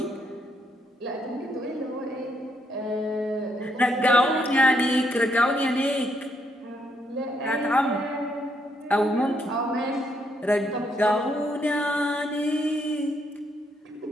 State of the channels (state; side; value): normal; both; correlation 0.75